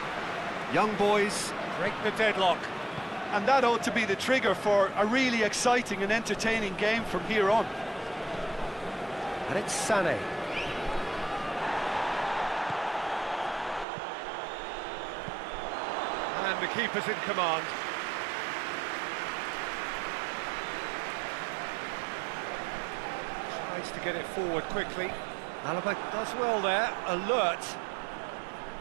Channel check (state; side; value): drops out; left; at 13.9 s